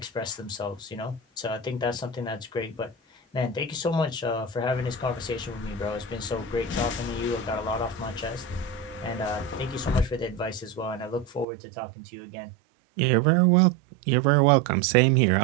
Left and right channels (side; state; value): left; drops out; at 11.5 s